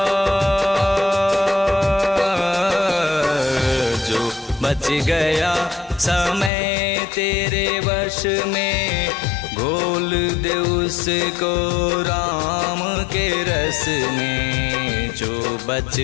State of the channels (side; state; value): right; drops out; at 6.5 s